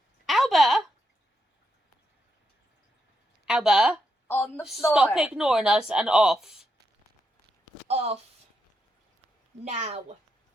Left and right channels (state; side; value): normal; both; correlation 0.83